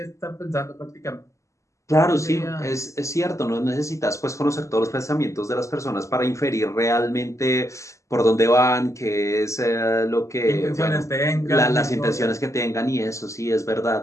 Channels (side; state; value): right; late; 0.15 ms